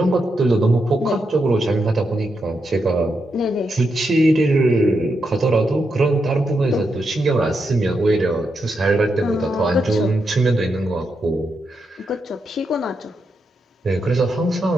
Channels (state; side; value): normal; both; correlation 0.84